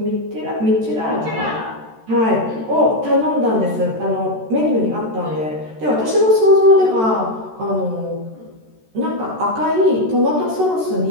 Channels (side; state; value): left; late; 13 ms